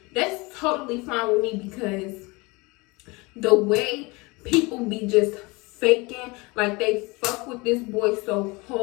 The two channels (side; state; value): right; quieter; 25.3 dB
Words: that's totally fine with me, because the way people be just faking, like they fuck with this boy so